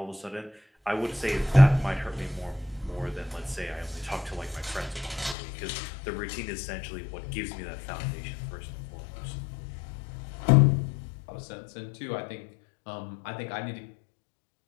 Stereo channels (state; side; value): drops out; right; at 5.4 s